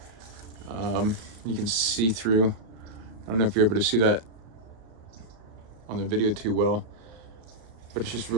You can see through. I don't know if you're able to see that on the video too well, but it's just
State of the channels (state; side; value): late; left; 35 ms